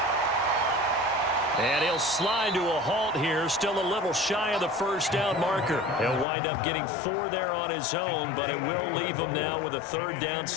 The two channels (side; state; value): right; drops out; at 6.2 s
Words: And he'll slide to a halt here. Still a little shy of the first down marker. He'll wind up getting 4 there on his own, but it will leave him now with a 3rd down